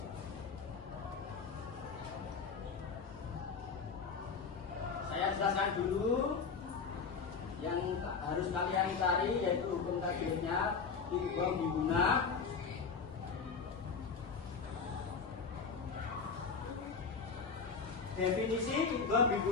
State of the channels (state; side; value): quieter; right; 5.4 dB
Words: Saya jelaskan dulu yang harus kalian cari, yaitu hukum tajwidnya idgham bi gunnah. Definisi idgham bi